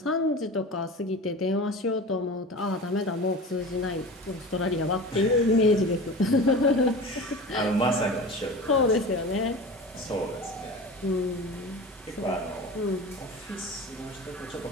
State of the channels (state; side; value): normal; both; correlation 0.33